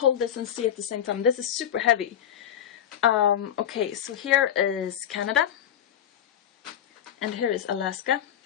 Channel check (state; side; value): quieter; right; 9.9 dB